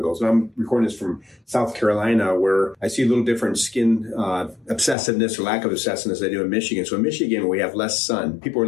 And I'm recording this from South Carolina, where I see a little different skin obsessiveness or lack of obsessiveness than I do in Michigan. So in Michigan, we have less sun. People are a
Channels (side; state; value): right; drops out; at 5.0 s